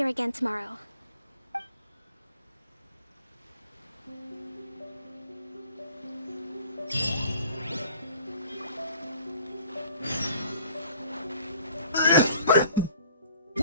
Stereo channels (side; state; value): both; inverted; correlation -0.53